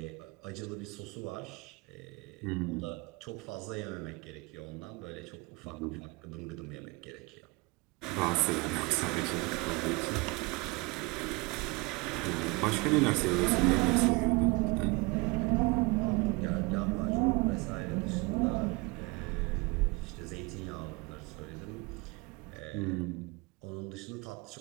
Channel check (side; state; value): left; quieter; 26.4 dB